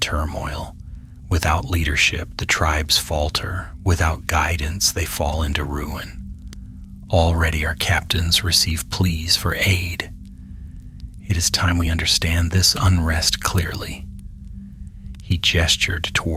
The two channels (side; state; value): both; identical; correlation 1.00